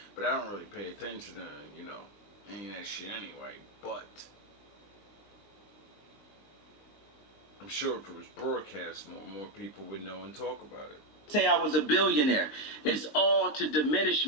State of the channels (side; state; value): right; late; 19 ms